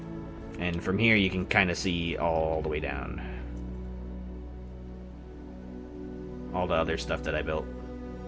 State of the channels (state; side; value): identical; both; correlation 1.00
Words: And from here you can kind of see all the way down. All the other stuff that I built.